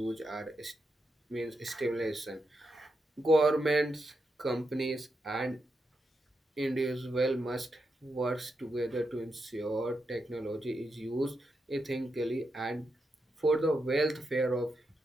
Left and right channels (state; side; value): normal; both; correlation 0.85